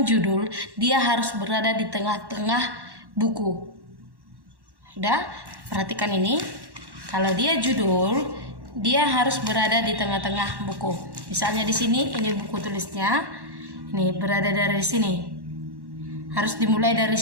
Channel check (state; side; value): late; left; 1.1 ms